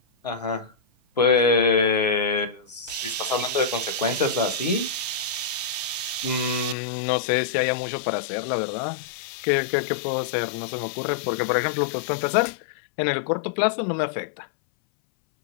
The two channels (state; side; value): drops out; right; at 6.8 s